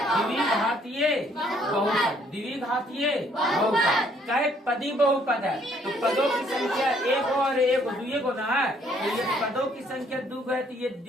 द्विघातीय बहुपद, द्विघातीय बहुपद। कई पदी बहुपद है तो पदों की संख्या एक और एक दुए गुना है, तो ये पदों की संख्या दो है तो ये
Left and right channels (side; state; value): both; normal; correlation 0.65